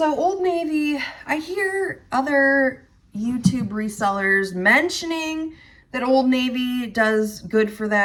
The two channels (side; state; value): both; identical; correlation 1.00